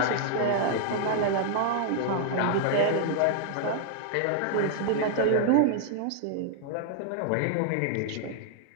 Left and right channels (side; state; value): both; different; correlation -0.01